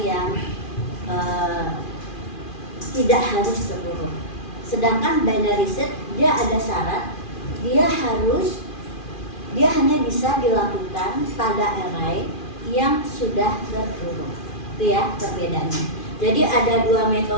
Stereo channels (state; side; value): late; right; 2.4 ms